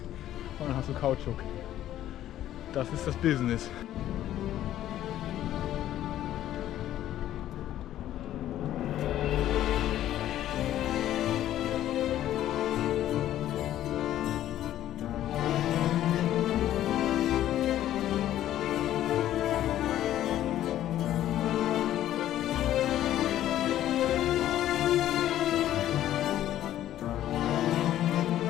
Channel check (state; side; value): quieter; right; 12.6 dB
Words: und dann hast du Kautschuk. Das ist das Business.